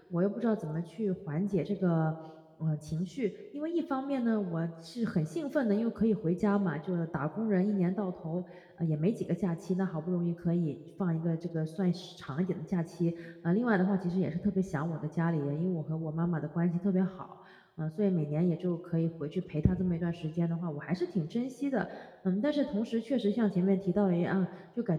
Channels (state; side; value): identical; both; correlation 1.00